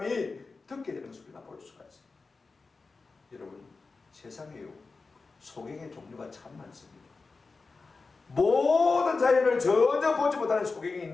듣게 되는 것을 우리가 볼 수가 있습니다. 여러분, 세상에요, 소경의 종류가 참 많습니다. 모든 자연을 전혀 보지 못하는 소경이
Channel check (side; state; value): right; quieter; 4.1 dB